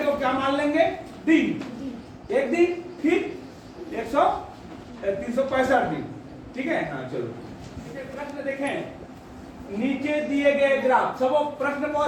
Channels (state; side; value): identical; both; correlation 1.00